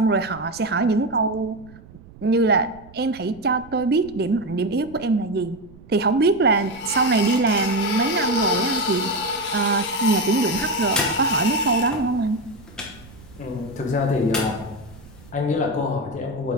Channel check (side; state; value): right; noise; rumble, 21 dB below the sound